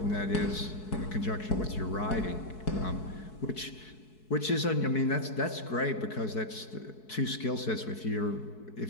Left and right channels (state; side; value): late; right; 4.7 ms